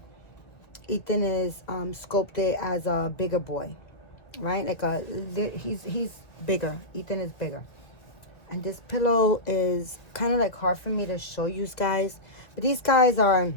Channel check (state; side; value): late; right; 2.1 ms